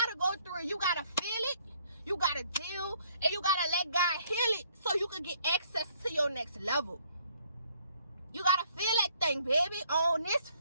go through it. You gotta feel it. You gotta deal, and you gotta let God heal it so you can get access to your next level. You gotta feel that thing, baby, on this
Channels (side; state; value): both; inverted; correlation -0.64